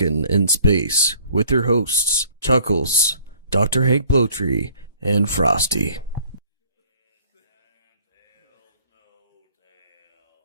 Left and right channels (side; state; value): both; inverted; correlation -0.56